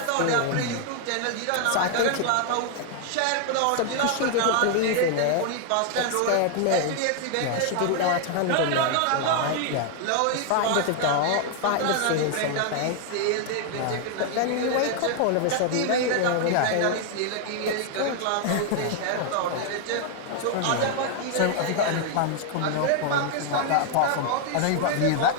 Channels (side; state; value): both; different; correlation 0.00